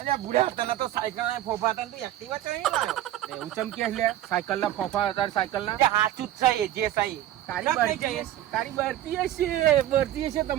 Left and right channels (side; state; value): left; quieter; 13.2 dB